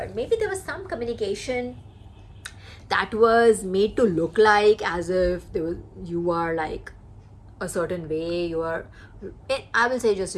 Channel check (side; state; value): both; identical; correlation 1.00